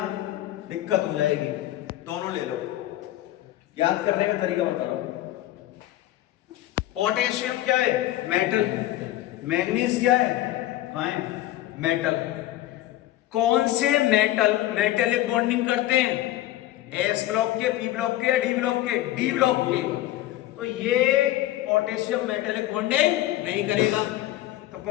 दिक्कत हो जाएगी। दोनों ले लो, याद करने का तरीका बता रहा हूं। पोटेशियम क्या है? मेटल। मैग्नीज क्या है? आयन। मेटल। कौन से मेटल मेटेलिक बॉन्डिंग करते हैं? S ब्लॉक के, P ब्लॉक के या D ब्लॉक के? D ब्लॉक के। तो ये पोटेशियम मेटेलिक बॉन्डिंग नहीं करेगा। तो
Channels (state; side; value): quieter; right; 14.7 dB